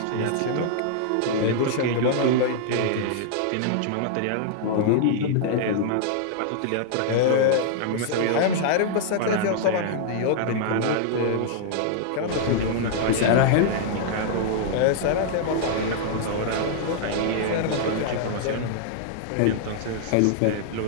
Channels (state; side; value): different; both; correlation -0.01